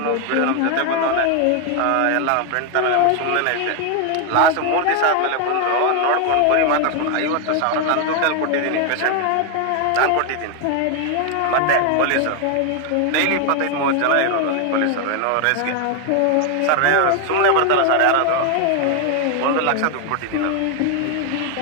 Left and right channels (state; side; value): different; both; correlation 0.01